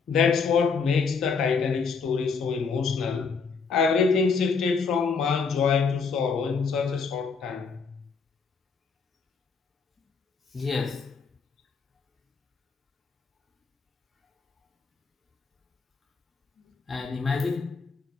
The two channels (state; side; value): quieter; right; 5.3 dB